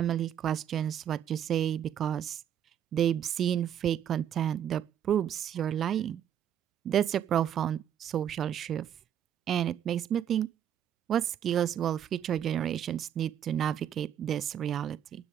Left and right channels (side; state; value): left; quieter; 9.7 dB